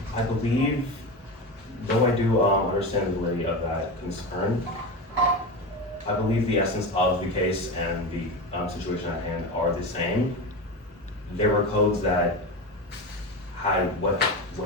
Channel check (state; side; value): normal; both; correlation 0.23